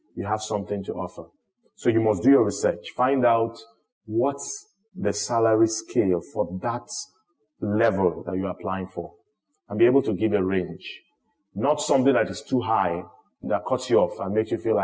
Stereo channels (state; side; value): identical; both; correlation 1.00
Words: You have something to offer. So you must do your research. Find out what's the salary scale for that level that you're applying for. and be able to give a range. Not something that is too high that cuts you off and makes you feel